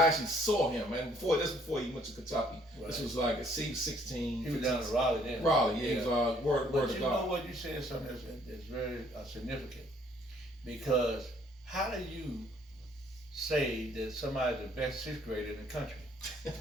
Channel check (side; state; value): both; normal; correlation 0.63